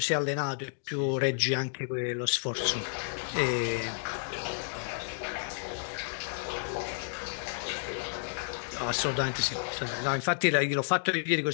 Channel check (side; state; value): right; silent; digital silence